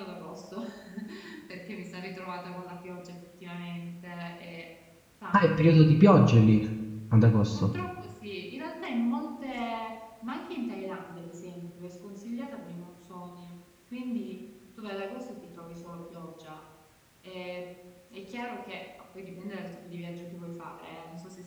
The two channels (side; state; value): both; identical; correlation 1.00